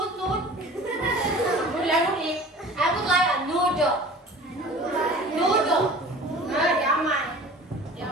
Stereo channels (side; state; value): both; normal; correlation 0.42